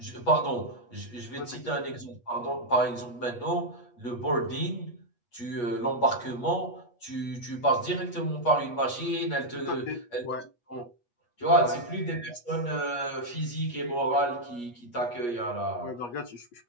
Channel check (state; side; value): late; right; 8.3 ms